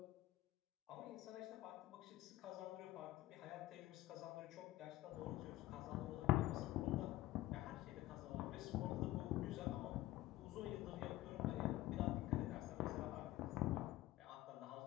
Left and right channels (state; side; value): quieter; right; 16.2 dB